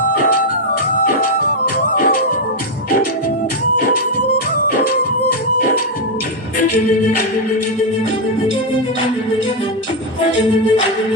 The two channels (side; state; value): both; normal; correlation 0.01